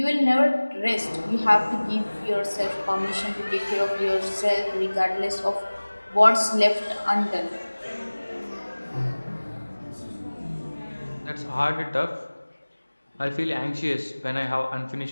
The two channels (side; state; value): both; inverted; correlation -1.00